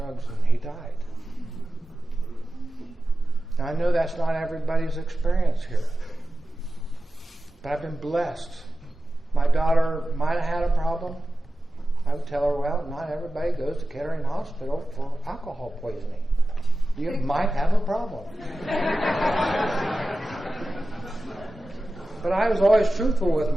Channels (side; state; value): both; normal; correlation 0.94